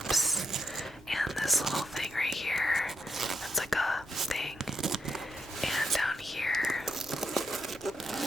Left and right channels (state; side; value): normal; both; correlation 0.81